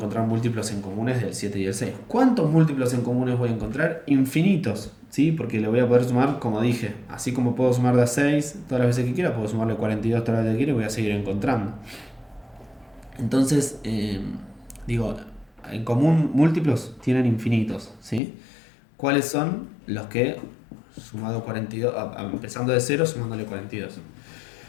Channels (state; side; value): drops out; right; at 18.2 s